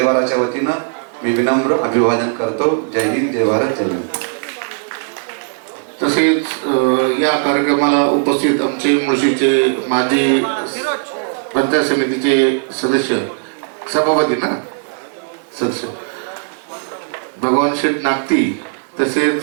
वतीनं मी विनम्र अभिवादन करतो. जय हिंद, जय भारत, जय हिंद. तसेच या कार्यक्रमाला उपस्थित आमचे मुळशीचे माजी पंचायत समितीचे सदस्य सभापती ना सदस्य भगवान शेठ नागती,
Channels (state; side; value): silent; left; digital silence